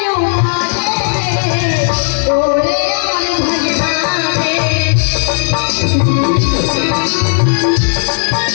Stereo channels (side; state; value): right; silent; 60 dB below the other